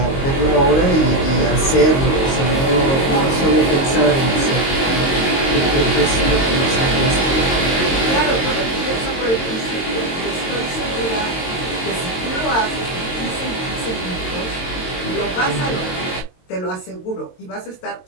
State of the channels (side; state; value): right; late; 22 ms